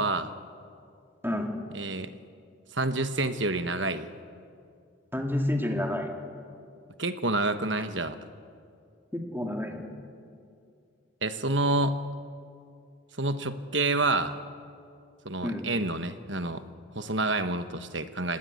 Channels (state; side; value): normal; both; correlation 0.25